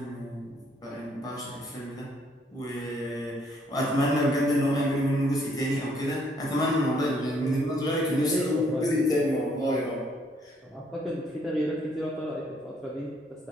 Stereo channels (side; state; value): both; normal; correlation 0.68